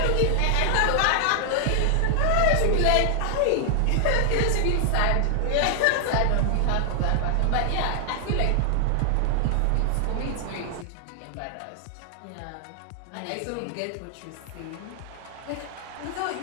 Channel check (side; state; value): both; different; correlation 0.00